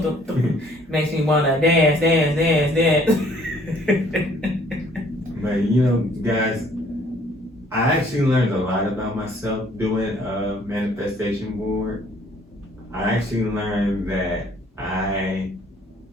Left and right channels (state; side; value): normal; both; correlation 0.60